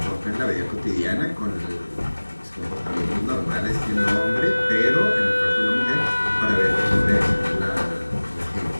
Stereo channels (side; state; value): both; inverted; correlation -1.00